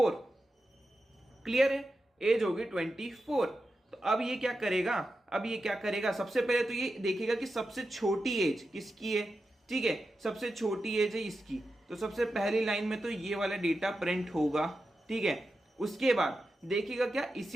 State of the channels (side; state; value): both; normal; correlation 0.90